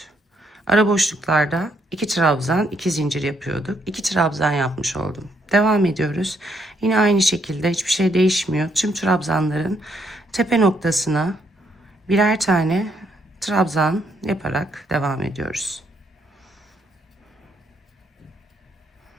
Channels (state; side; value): normal; both; correlation 0.73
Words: Ara boşluklarda 2 trabzan, 2 zincir yapıyorduk. 2 trabzan yapmış oldum. Devam ediyoruz. Yine aynı şekilde hiçbir şey değişmiyor. Tüm trabzanların tepe noktasına birer tane trabzan yaparak devam ediyoruz.